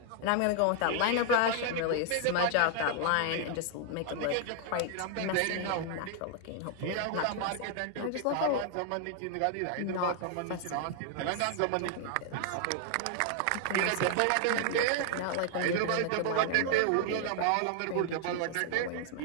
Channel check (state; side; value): different; both; correlation 0.00